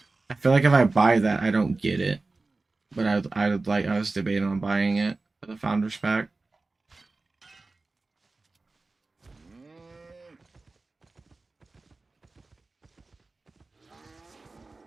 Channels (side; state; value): left; quieter; 3.5 dB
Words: I feel like if I buy that, I don't get it. But I was debating on buying it, the founders pack.